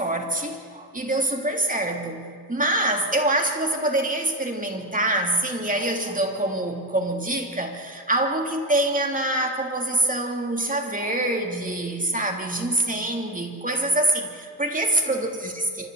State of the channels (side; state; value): both; normal; correlation 0.15